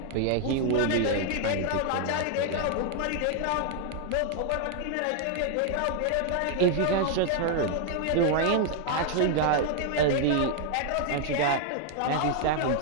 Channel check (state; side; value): different; both; correlation 0.00